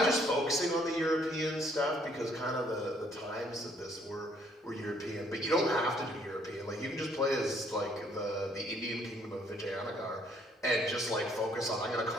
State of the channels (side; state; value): both; normal; correlation 0.65